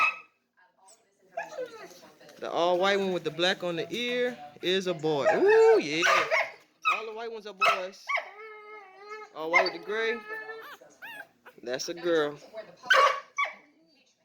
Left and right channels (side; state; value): both; identical; correlation 1.00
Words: The all white one with the black on the ear is a boy. Ooh, yeah. All the white ones are boys. All white with the gray. That's a girl.